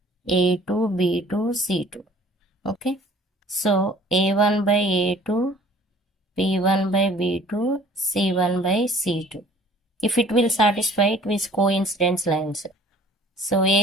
A2, B2, C2. Okay. So A1 by A2, B1 by B2, C1 by C2. If it will satisfy it with coincidence lines. So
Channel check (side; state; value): both; normal; correlation 0.52